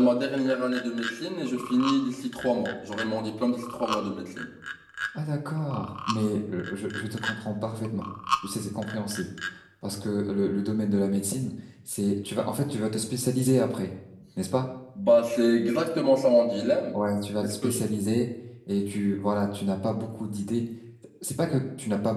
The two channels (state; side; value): identical; both; correlation 1.00